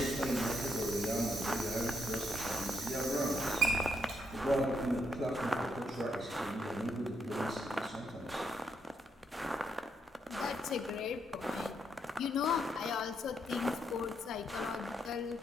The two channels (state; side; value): normal; both; correlation 0.78